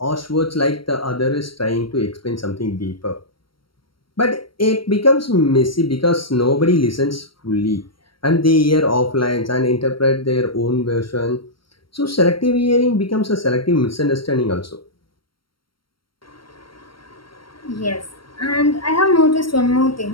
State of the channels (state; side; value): late; right; 0.73 ms